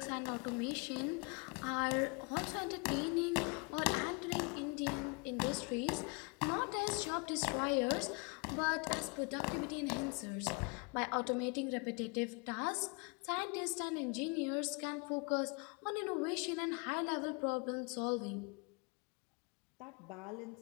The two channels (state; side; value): quieter; right; 32.4 dB